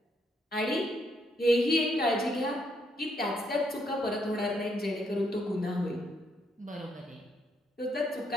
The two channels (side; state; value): both; normal; correlation 0.74